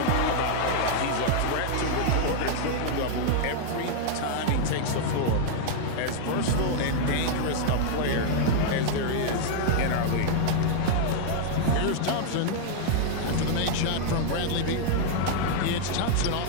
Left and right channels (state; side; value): different; both; correlation -0.01